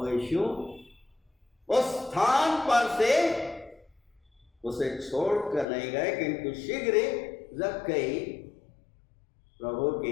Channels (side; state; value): right; drops out; at 5.7 s